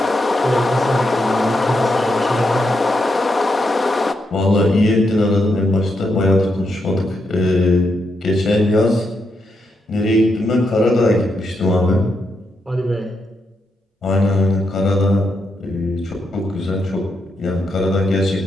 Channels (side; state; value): both; normal; correlation 0.82